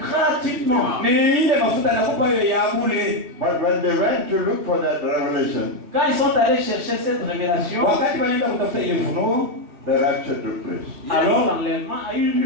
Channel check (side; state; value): left; late; 3.4 ms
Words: gratuitement. Ni ile mafuta anakupa hiyo ya bure. But when they went to look for that revelation, Quand ils sont allés chercher cette révélation, Wakati wanaenda kutafuta ile ufunuo, the rapture took place. alors l'enlèvement a eu